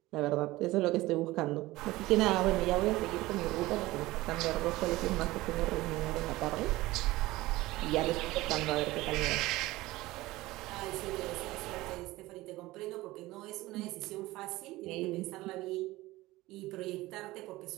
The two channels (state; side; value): quieter; left; 18.7 dB